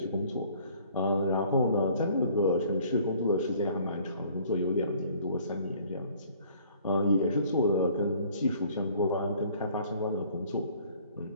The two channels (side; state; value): both; inverted; correlation -0.56